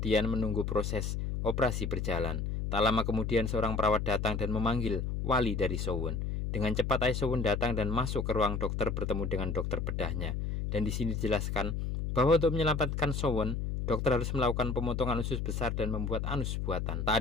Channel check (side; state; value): left; noise; hum, 2 dB below the sound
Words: menunggu proses operasi berjalan. Tak lama kemudian seorang perawat datang dan memanggil wali dari Sowon. Dengan cepat ayah Sowon datang dan masuk ke ruang dokter bertemu dengan dokter bedahnya. Dan di sini dijelaskan bahwa untuk menyelamatkan Sowon, dokter harus melakukan pemotongan usus besar dan membuat anus buatan. Tak